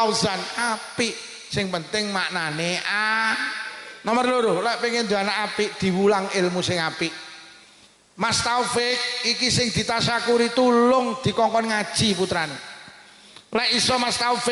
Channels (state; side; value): identical; both; correlation 1.00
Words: Apik. Sing penting maknane Nomor 2 lek pengen duwe anak apik diwulang ilmu sing apik. Mas Taufik iki sing ditasyakuri tulung dikongkon ngaji putrane. Lek iso Mas